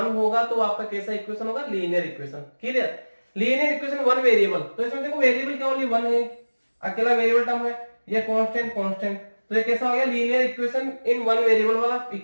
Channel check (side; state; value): both; inverted; correlation -1.00